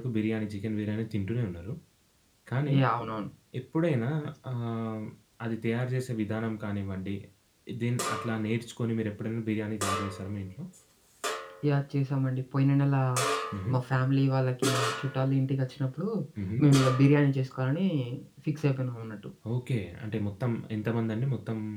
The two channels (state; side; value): identical; both; correlation 1.00